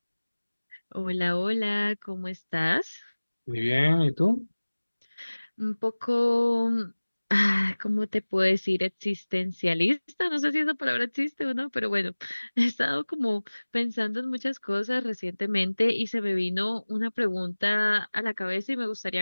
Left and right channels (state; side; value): inverted; both; correlation -1.00